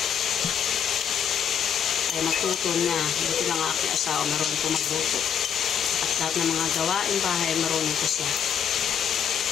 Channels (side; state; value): right; quieter; 8.3 dB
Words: Kaya magtuto na. Buti lang aking asawa marunong po magluto. At lahat ng mga gawain bahay marunong ko siya.